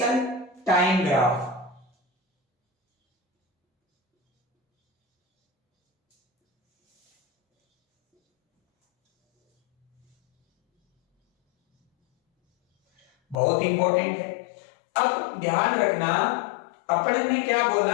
time graph. बहुत इंपॉर्टेंट है। अब ध्यान रखना, अपन ने क्या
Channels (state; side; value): drops out; right; at 13.4 s